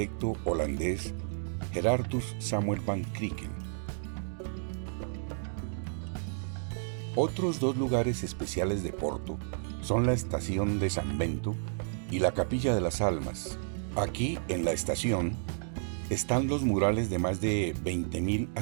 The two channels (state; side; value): silent; left; digital silence